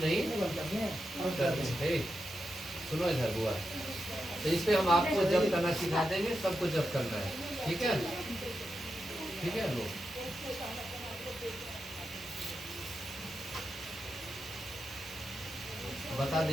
नहीं करते। सुनो इधर बुआ, तो इस पे हम आपको जब करना सिखा देंगे, सबको जब करना है, ठीक है, ठीक है। लो बता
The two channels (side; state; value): both; normal; correlation 0.88